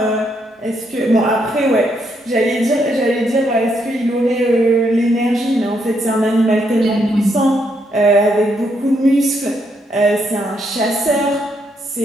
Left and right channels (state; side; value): normal; both; correlation 0.76